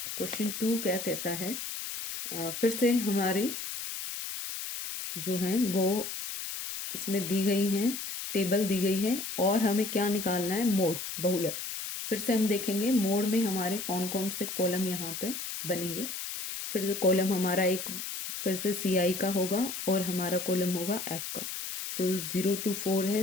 क्वेश्चन 2 क्या कहता है, फिर से हमारी जो है वो इसमें दी गई हैं, टेबल दी गई है, और हमें क्या निकालना है, मोड बहुलक। फिर से हम देखेंगे मोड में हमारे कौन कौन से कॉलम यहाँ पे बनेंगे। फिर से कॉलम हमारा एक फिर से सी आई का होगा और हमारा कॉलम होगा एफ का। तो 0 to 4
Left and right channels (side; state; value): left; noise; hiss, 6 dB below the sound